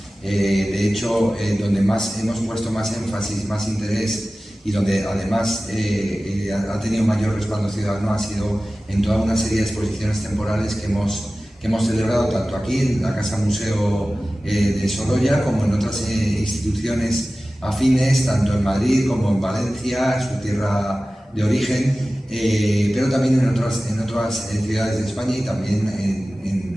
De hecho, donde hemos puesto más énfasis, más interés y donde además ha tenido mayor respaldo ciudadano ha sido en toda una serie de exposiciones temporales que hemos celebrado tanto aquí en la Casa Museo de Sorolla como en otras instituciones afines, tanto en Madrid como en Valencia, su tierra de origen, pero también en otras ciudades de España y también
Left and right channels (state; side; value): normal; both; correlation 0.96